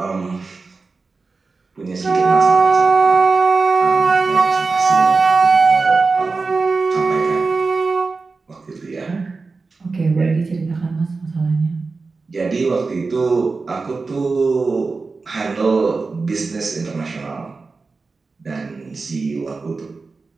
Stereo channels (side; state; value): left; quieter; 4.1 dB